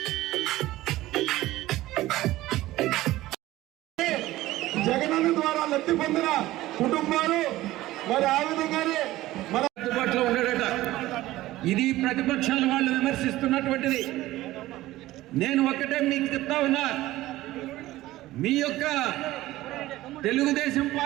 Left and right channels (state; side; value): quieter; left; 16.5 dB